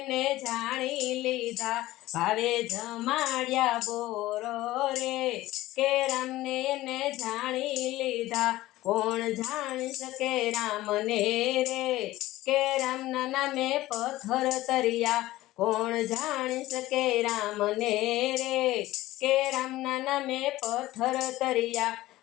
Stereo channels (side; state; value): right; quieter; 16.7 dB